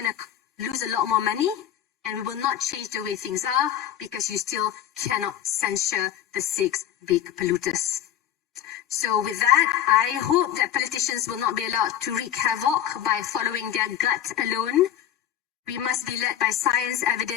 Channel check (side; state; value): right; quieter; 10.7 dB